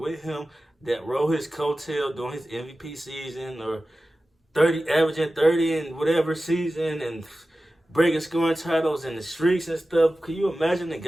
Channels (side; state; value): both; normal; correlation 0.95